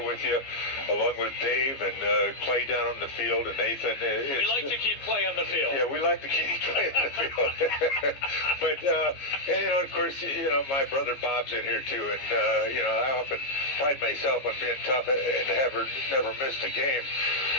you, along with Dave and Clay down on the field, and Nathan. We like to keep Clay on the field. Yeah, we like to keep Clay on the field. But, and, you know, of course, you know, my brother Bob's in here, too. And, you know, I often pride myself on being tough and never missed a game.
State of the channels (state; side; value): late; right; 15 ms